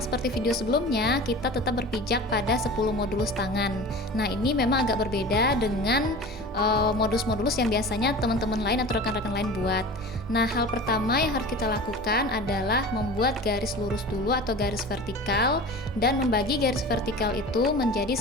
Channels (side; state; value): both; normal; correlation 0.36